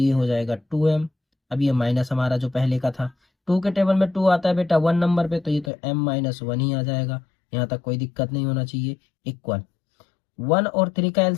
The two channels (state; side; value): drops out; right; at 5.7 s